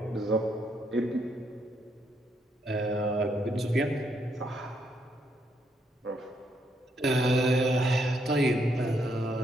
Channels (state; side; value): normal; both; correlation 0.75